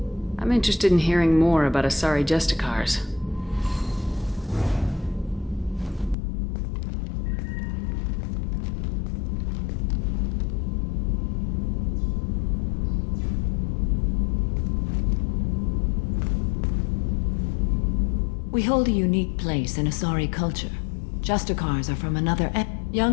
I'm interested in hearing more about Asari Justicars. We hold a unique place in Asari culture. Justicars are from another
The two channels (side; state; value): right; drops out; at 6.2 s